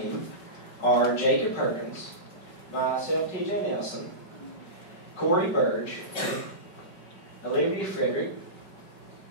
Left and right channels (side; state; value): right; late; 5.2 ms